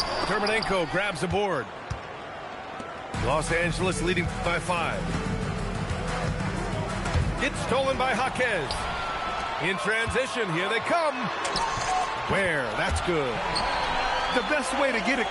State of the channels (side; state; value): both; identical; correlation 1.00